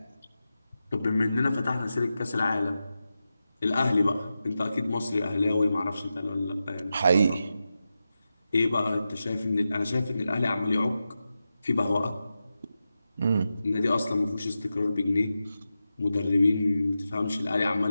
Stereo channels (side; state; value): both; inverted; correlation -0.91